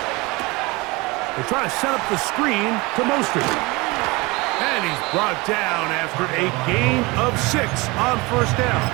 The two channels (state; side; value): quieter; left; 24.2 dB